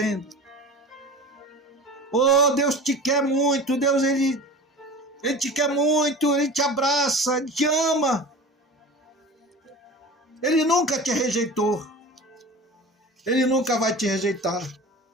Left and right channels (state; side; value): normal; both; correlation 0.36